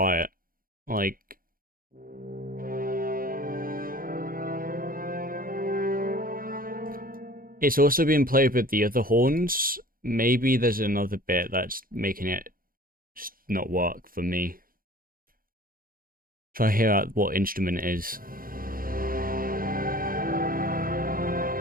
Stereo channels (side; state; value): left; late; 0.41 ms